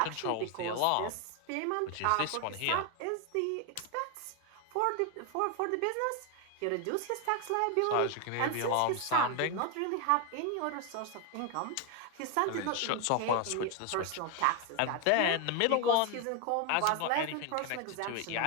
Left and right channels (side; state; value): both; different; correlation 0.01